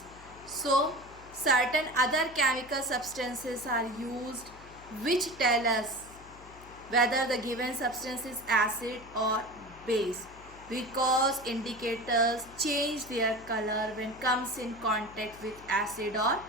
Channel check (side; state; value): left; noise; hum, 20 dB below the sound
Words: So certain other chemical substances are used which tell us whether the given substance is acid or base, because indicators change their color when comes in contact with acid or